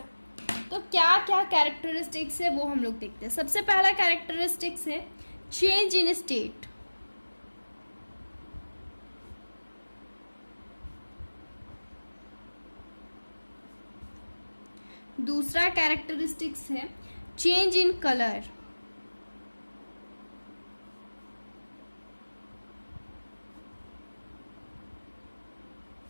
तो क्या क्या कैरेक्टरिस्टिक्स है वो हम लोग देखते हैं। सबसे पहला कैरेक्टरिस्टिक्स है चेंज इन स्टेट। दूसरा कैरेक्टरिस्टिक्स है चेंज इन कलर।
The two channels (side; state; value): both; inverted; correlation -1.00